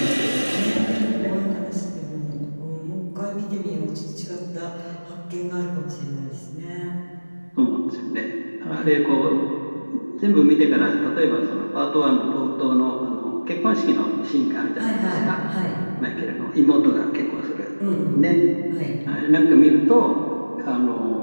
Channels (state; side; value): inverted; both; correlation -1.00